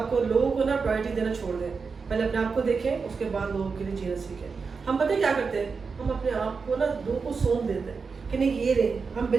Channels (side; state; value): left; quieter; 5.0 dB